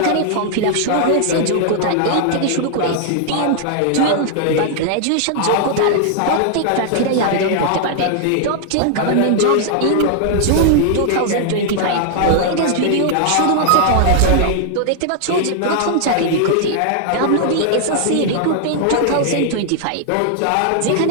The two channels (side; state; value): both; different; correlation 0.00